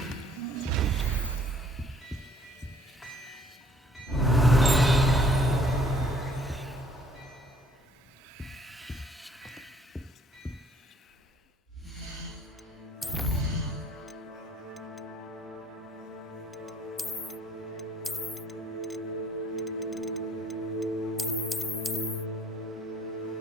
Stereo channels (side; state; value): both; normal; correlation 0.59